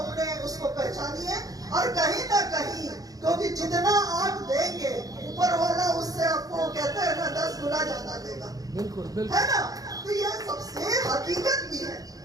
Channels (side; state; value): left; late; 0.18 ms